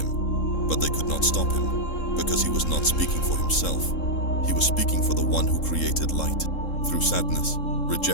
but they could not stop him, because he was not speaking for himself. He was speaking for the one who created light. Through sadness,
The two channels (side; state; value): right; late; 3.7 ms